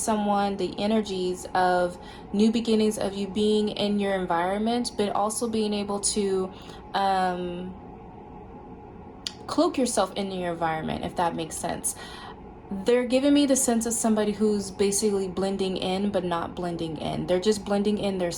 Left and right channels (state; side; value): identical; both; correlation 1.00